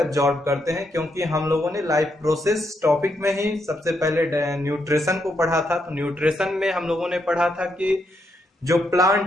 करते हैं, क्योंकि हम लोगों ने लाइफ प्रोसेस टॉपिक में ही सबसे पहले न्यूट्रिशन को पढ़ा था। तो न्यूट्रिशन में हम लोगों ने पढ़ा था कि जो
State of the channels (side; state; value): both; normal; correlation 0.79